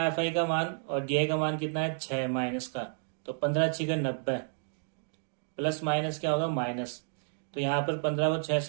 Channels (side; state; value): left; silent; digital silence